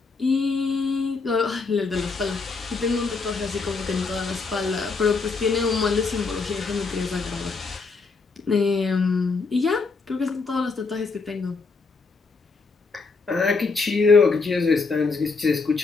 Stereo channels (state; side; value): quieter; right; 4.3 dB